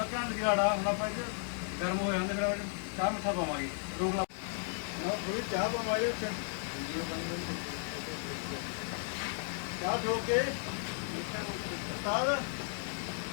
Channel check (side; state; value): right; silent; 55 dB below the other